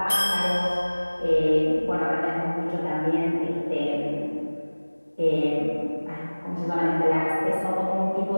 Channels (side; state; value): both; inverted; correlation -1.00